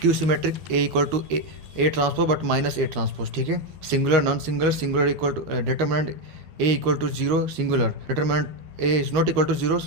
symmetric A equal to A transpose but minus A transpose. ठीक है, singular non singular singular equal to determinant A equal to zero singular determinant A is not equal to zero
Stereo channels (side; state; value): left; late; 12 ms